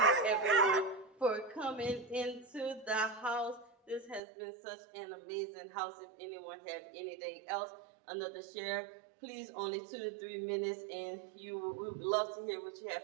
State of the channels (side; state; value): left; drops out; at 4.2 s